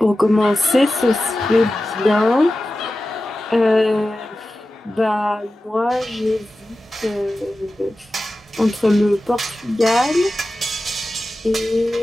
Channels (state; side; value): normal; both; correlation 0.94